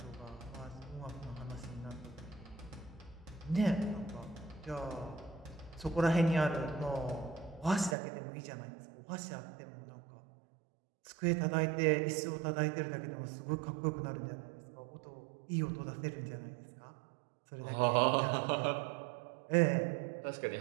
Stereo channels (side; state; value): left; drops out; at 8.0 s